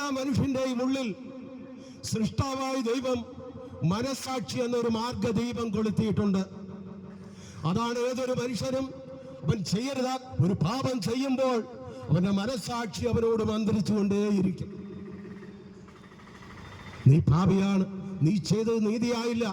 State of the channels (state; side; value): identical; both; correlation 1.00